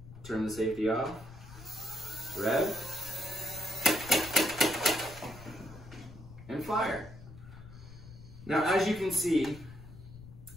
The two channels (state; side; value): noise; left; rumble, 16 dB below the sound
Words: turn the safety off, rev, and fire. Now, as you can see,